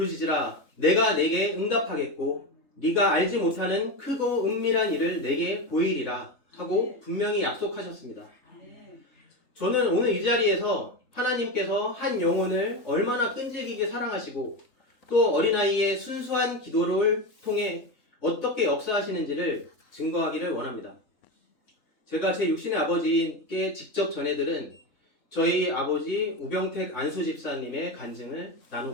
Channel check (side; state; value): right; late; 3.6 ms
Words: 내가 내게 응답하겠고 네가 알지 못하는 크고 은밀한 일을 내게 보이리라 하고 분명히 약속하셨습니다. 저는 오늘 이 자리에서 하나님께서 한 영혼을 얼마나 끈질기게 사랑하시고 또 어린아이의 순수한 기도를 통해 어떻게 역사하시는지를 증거하기를 원합니다. 제가 제 육신의 아버지께 직접 전해들은 저희 아버지 우병택 안수 집사님의 간증을